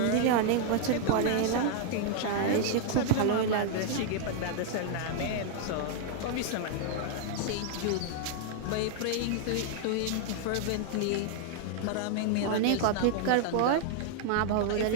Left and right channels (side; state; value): both; different; correlation 0.00